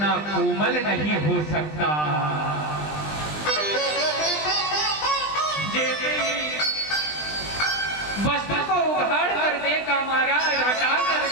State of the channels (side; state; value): right; late; 20 ms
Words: कोमल नहीं हो सकता। वस्त्र को उघाड़ कर देखा महाराज, हटा कर